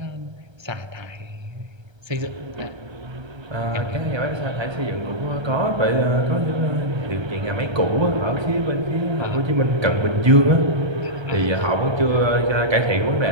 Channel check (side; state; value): left; late; 1.3 ms